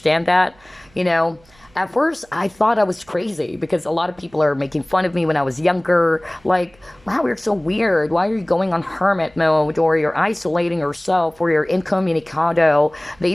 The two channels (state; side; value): noise; right; hum, 30 dB below the sound